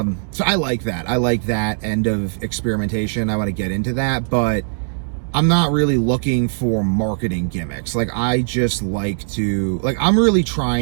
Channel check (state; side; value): silent; left; digital silence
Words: so I like that. I like that end of experimentation. I want to get into that, but I'm not really looking for marketing gimmicks. Like, I just like to, like, I'm really